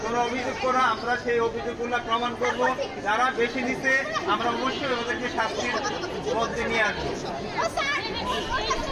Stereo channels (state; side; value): identical; both; correlation 1.00